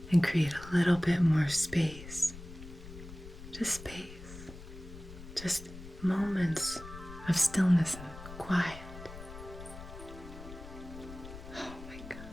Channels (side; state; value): left; noise; rumble, 14 dB below the sound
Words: and create a little bit more space, just moments of stillness and quiet. Oh my